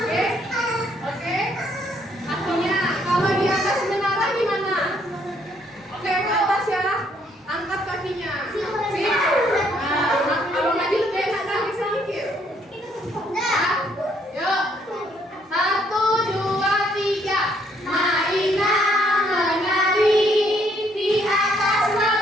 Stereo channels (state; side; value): normal; both; correlation 0.68